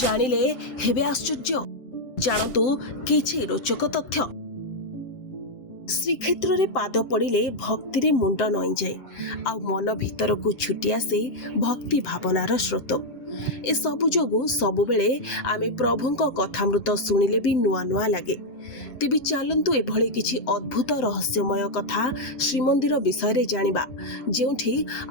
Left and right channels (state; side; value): late; right; 7.7 ms